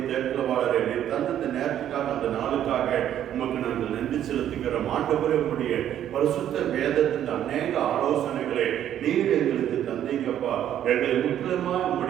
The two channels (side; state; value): left; quieter; 10.8 dB